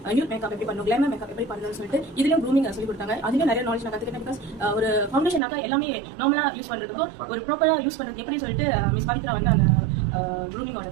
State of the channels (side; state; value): left; drops out; at 5.4 s